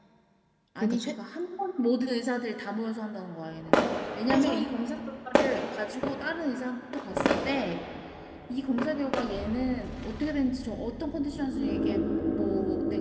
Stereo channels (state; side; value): identical; both; correlation 1.00